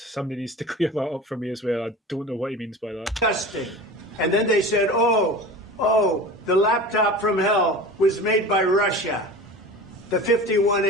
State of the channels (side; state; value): both; normal; correlation 0.35